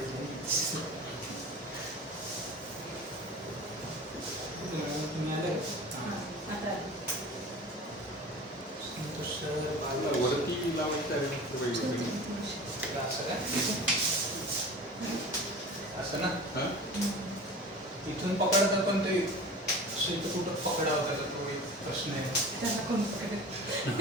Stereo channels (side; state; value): both; normal; correlation 0.37